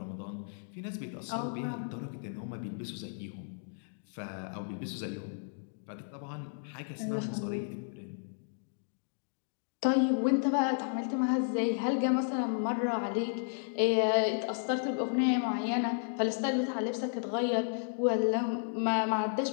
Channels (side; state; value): right; silent; digital silence